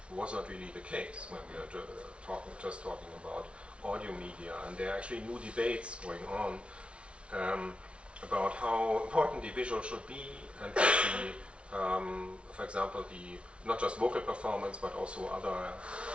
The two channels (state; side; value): late; left; 0.060 ms